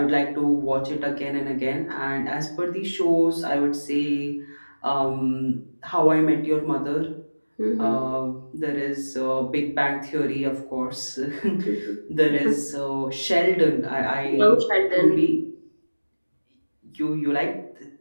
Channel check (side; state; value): both; inverted; correlation -1.00